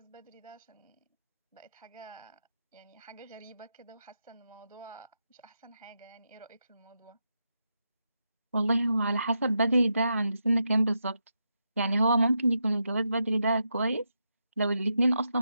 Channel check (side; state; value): both; inverted; correlation -0.85